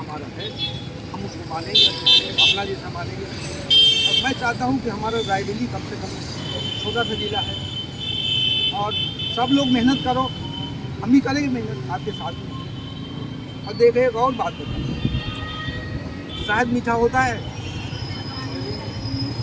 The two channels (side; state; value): both; identical; correlation 1.00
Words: है, हम उसको मानेंगे, अपना जैसा मानेंगे। और मैं चाहता हूँ कि हमारा रायबरेली कम से कम छोटा सा जिला है और सब लोग मेहनत करो, हम भी करेंगे मेहनत आपके साथ में। और देखें एक और बात बताओ, शहद मीठा होता है,